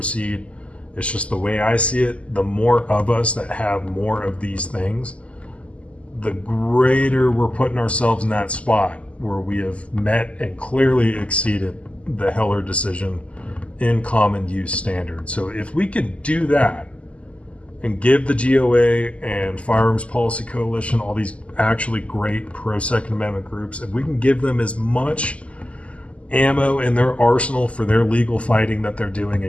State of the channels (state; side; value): late; right; 0.061 ms